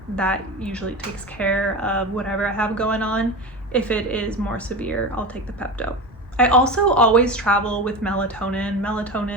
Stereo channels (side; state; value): both; normal; correlation 0.25